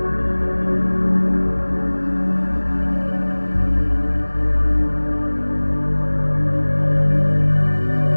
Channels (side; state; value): both; inverted; correlation -1.00